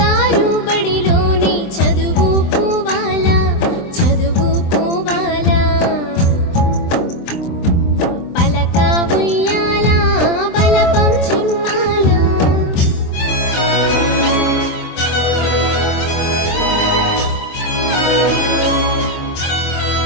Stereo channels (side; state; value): right; late; 23 ms